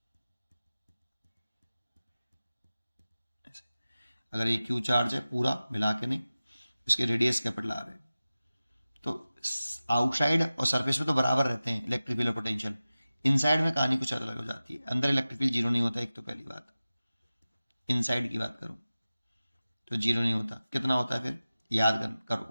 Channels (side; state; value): both; inverted; correlation -0.96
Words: ऐसे अगर ये क्यू चार्ज है पूरा मिला के, नहीं, इसके रेडियस कैपिटल आर है, तो आउटसाइड और सरफेस में तो बराबर रहते हैं इलेक्ट्रिक फील्ड और पोटेंशियल, इनसाइड में कहानी कुछ अलग हो जाती है। अंदर इलेक्ट्रिक फील्ड जीरो नहीं होता, एक तो पहली बात। इनसाइड की बात करूं तो जीरो नहीं होता, कितना होता है फिर, याद करो,